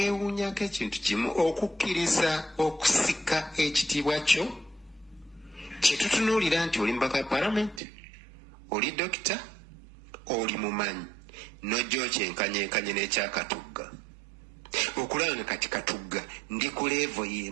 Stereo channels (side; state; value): left; drops out; at 7.8 s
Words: ekintu kimu okukkiriza okusika ekitiibwa kyo kyetutunuulira nti oli mubaka wa palamenti oli dokita oli mumanyi nojja okyenkanyenkanye n'ekyakatugga okulaba nga kati Katugga ndi ku levo